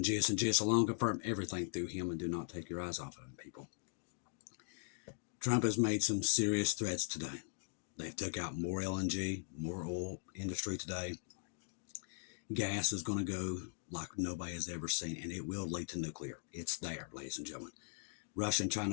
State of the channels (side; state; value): right; silent; digital silence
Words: Jesus and Jesus alone. Confirm everything through him and do not take your eyes off of him, people. Trump has made some serious threats today. They've took out more LNG, more oil industry today. Gas is going to go like nobody has ever seen, and it will lead to nuclear. It's there, ladies and gentlemen. Russia and China